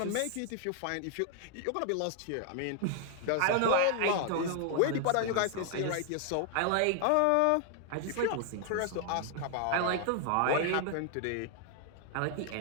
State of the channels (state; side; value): different; both; correlation 0.00